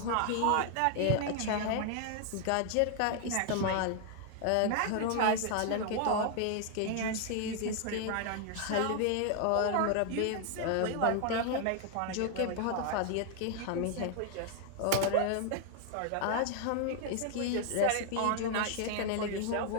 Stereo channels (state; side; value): different; both; correlation 0.00